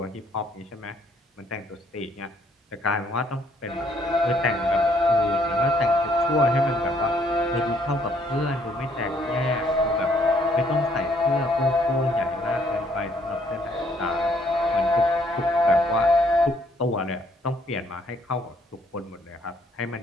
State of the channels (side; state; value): both; normal; correlation 0.66